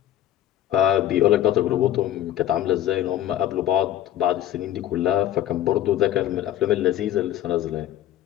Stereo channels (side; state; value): right; quieter; 12.2 dB